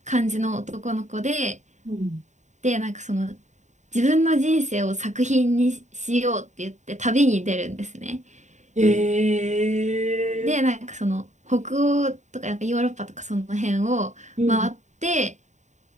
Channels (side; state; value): left; late; 0.34 ms